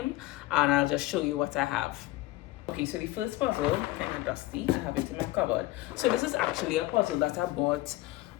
and I'll just show you what I have. Okay, so the first puzzle, kind of dusty, I have it in my cupboard. So this is actually a puzzle that I bought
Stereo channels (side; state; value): right; quieter; 17.6 dB